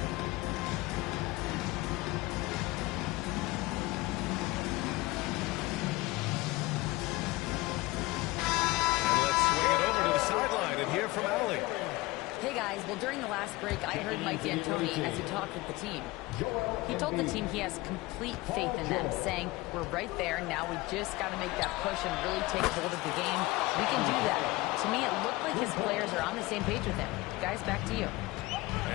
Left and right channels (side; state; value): right; quieter; 20.9 dB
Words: Well, during the last break, I heard Mike D'Antoni as he talked with the team. He told the team he has complete faith in them, saying, we're right there, now we just got to make that push and really take hold of the game. We can do that. To me, it looked like his players are on the same page with him. Guys, back to you.